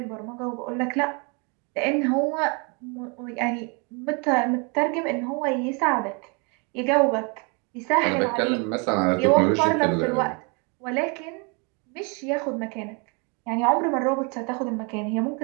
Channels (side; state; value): left; quieter; 33.2 dB